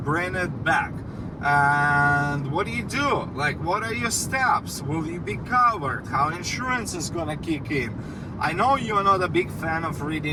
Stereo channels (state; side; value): identical; both; correlation 1.00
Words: it back, and what do? Like, what are your steps? Will you be covered? How insurance is gonna kick in? I know you're not a big fan of